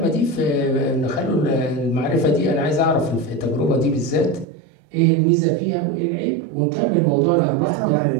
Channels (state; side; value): drops out; left; at 4.5 s